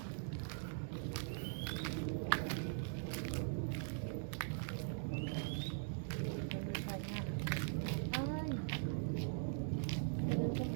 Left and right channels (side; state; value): left; silent; digital silence